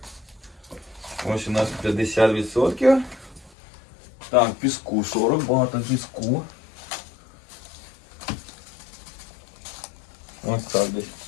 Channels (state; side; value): drops out; right; at 3.5 s